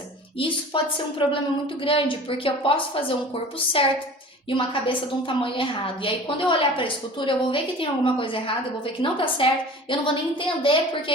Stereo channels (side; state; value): both; normal; correlation 0.41